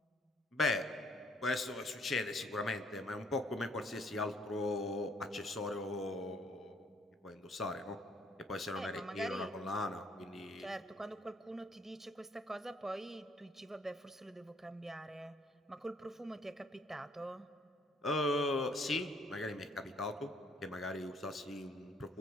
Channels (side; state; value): both; normal; correlation 0.64